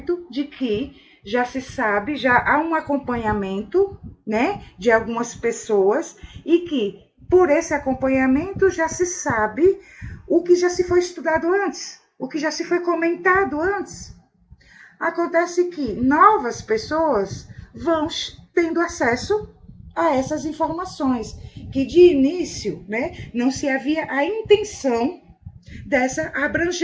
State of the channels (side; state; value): both; identical; correlation 1.00